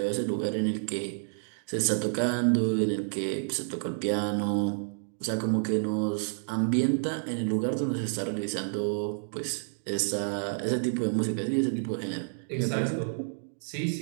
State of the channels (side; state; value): left; silent; digital silence